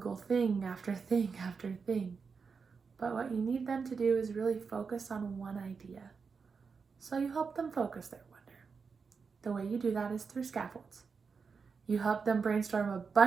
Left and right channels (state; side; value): quieter; left; 5.3 dB